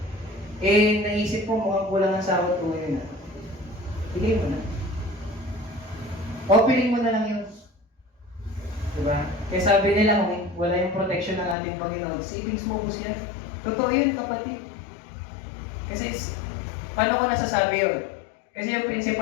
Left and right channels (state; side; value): drops out; right; at 11.6 s